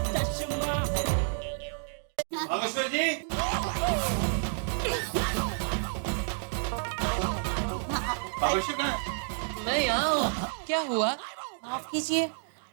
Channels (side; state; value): left; silent; digital silence